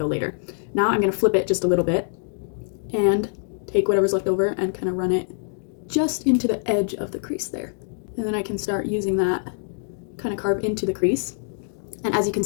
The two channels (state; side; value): silent; right; digital silence